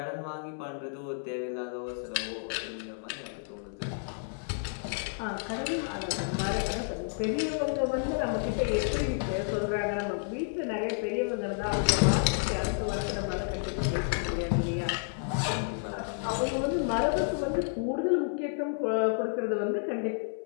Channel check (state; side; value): silent; right; 57 dB below the other